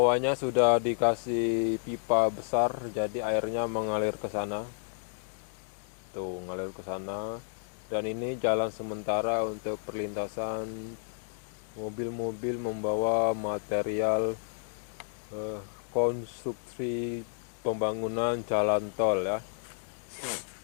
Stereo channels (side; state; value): right; silent; digital silence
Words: sudah dikasih pipa besar, jadi airnya mengalir ke sana. Tuh, ngalir ke sana. Dan ini jalan sementara untuk perlintasan mobil-mobil membawa material konstruksi pembangunan jalan tol ya.